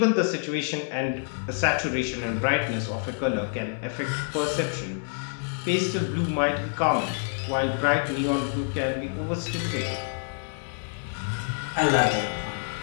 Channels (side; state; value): right; silent; 60 dB below the other